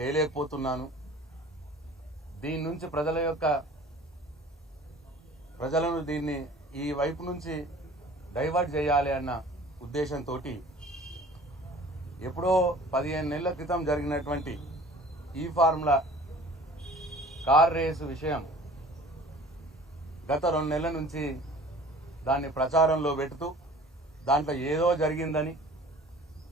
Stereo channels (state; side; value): normal; both; correlation 0.47